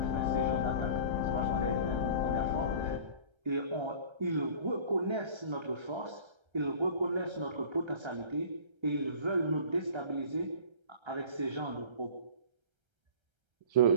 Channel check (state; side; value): late; left; 1.3 ms